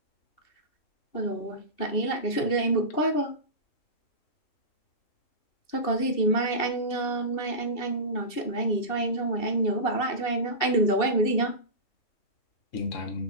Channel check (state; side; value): late; right; 2.7 ms